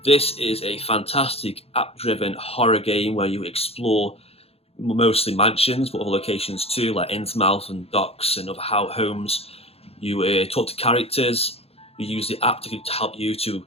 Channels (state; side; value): late; right; 0.29 ms